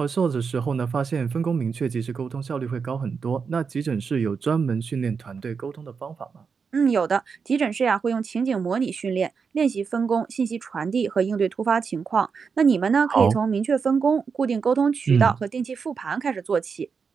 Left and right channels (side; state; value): left; quieter; 5.7 dB